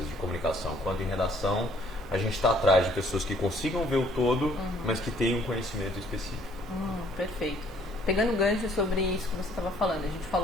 de comunicação quanto em redação, a gente está atrás de pessoas que consigam ver o todo, mas que tenham um conhecimento específico. Perfeito. Pegando o gancho sobre isso que você estava falando, a gente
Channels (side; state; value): both; normal; correlation 0.61